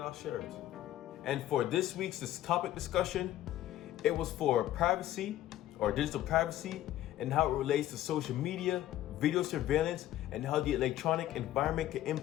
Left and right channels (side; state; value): right; quieter; 13.6 dB